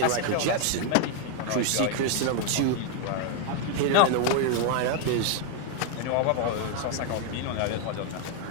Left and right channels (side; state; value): both; different; correlation 0.01